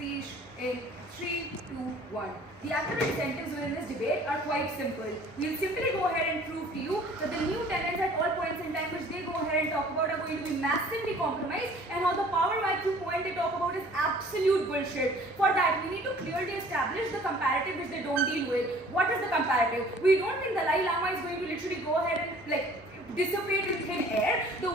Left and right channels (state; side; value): normal; both; correlation 0.51